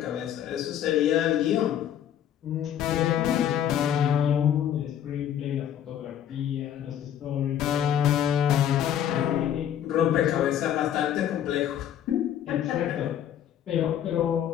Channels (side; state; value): right; quieter; 10.2 dB